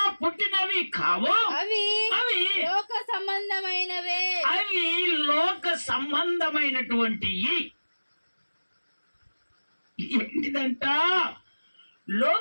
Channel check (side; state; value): both; inverted; correlation -1.00